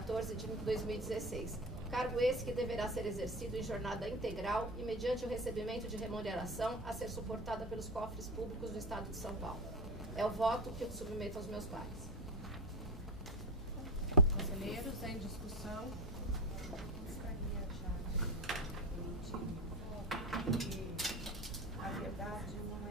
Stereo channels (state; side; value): normal; both; correlation 0.23